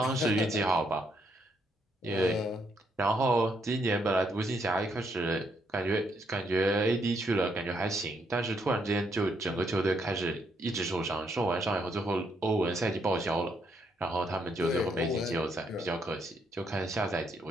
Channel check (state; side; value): normal; both; correlation 0.75